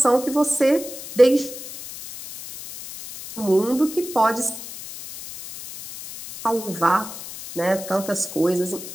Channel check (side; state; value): left; noise; hiss, 12 dB below the sound